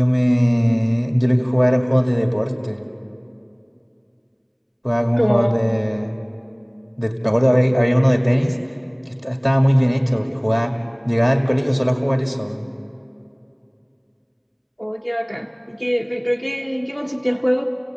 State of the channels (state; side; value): identical; both; correlation 1.00